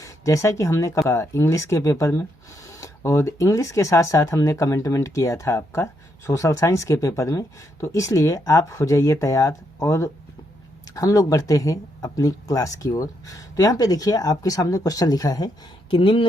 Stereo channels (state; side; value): normal; both; correlation 0.78